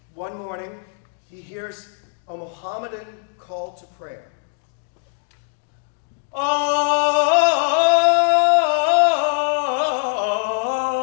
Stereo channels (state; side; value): silent; right; digital silence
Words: one morning, he hears a Mohammedan call to prayer. Oh,